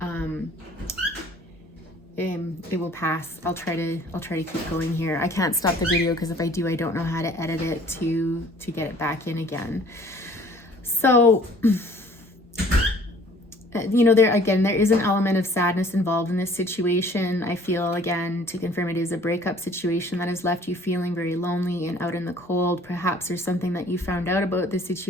it will pass. I'll try to keep going here. I can't stop the video because if I do, I don't know how to edit it to get it back in again. So, you know, there is an element of sadness involved in this situation. I feel, again, to confirm, it is a breakup situation that has left you feeling very lonely and out in the cold. Perhaps there's something that you found out about this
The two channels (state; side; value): normal; both; correlation 0.53